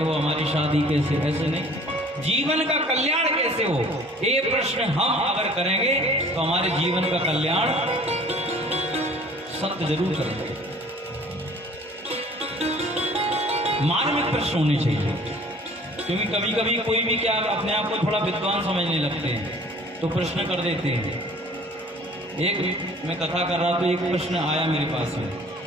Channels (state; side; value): normal; both; correlation 0.51